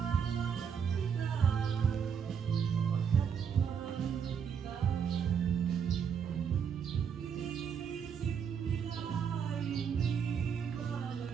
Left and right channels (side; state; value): left; quieter; 7.2 dB